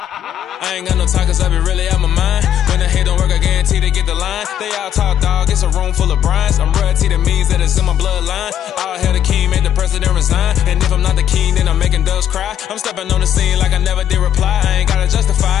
I ain't got no talk cause I be really out my mind. When the hate don't work, I guarantee they get the line. They all talk dog, it's a room full of brines. I'm royalty, that means that it's in my bloodline. All hell the king, made the president resign. And if I'm not the king, then I'm making doves cry. I'm stepping on the scene like I never did reply. I ain't gotta justify,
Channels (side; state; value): right; quieter; 10.3 dB